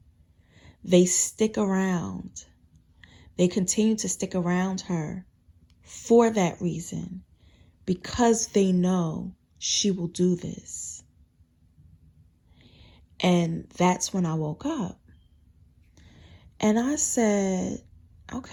they stick around. They continue to stick around her for that reason, because they know she will do this. And that's when I woke up. And I said,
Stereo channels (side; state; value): both; identical; correlation 1.00